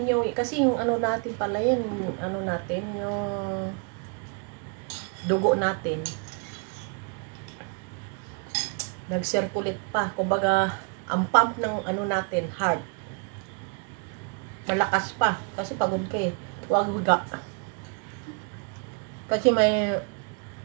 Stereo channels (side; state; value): left; quieter; 37.9 dB